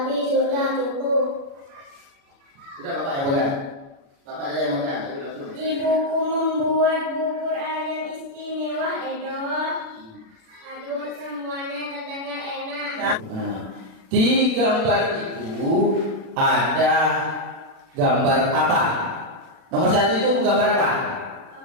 sudah cukup. Sudah bapak yang pegang. Bapak aja yang pegang. Ayo langsung. Ibuku membuat bubur ayam istimewa, Edo. Aduh, semuanya terdengar enak. Nah, di gambar itu ada gambar apa? Nomor 1 itu gambar apa?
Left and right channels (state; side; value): late; left; 36 ms